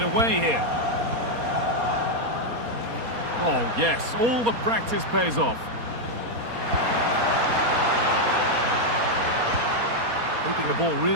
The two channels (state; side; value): late; left; 4.3 ms